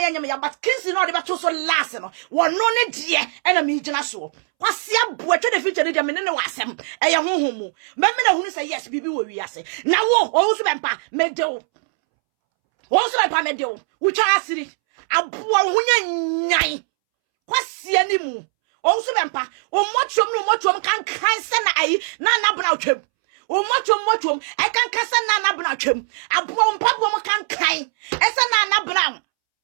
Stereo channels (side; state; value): left; silent; 65 dB below the other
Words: ye nyame ya but kinsi no de beto so last no wo no ne die na me gina so kwasia boa twe de future de me ne wasem eye honhomu me na hunu say yes bibi wo wi ase na wo o so be mpa me de wo so be mpa me de wo twa asiri aboa hunya nyan kwasia ni mu o so bempa o mochom kan se na ayi na nabna atwam o mochom e kan se na nabna atwam abo mpabo mo kan ese na nabna